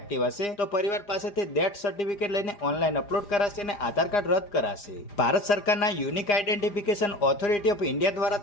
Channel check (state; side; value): late; right; 4.9 ms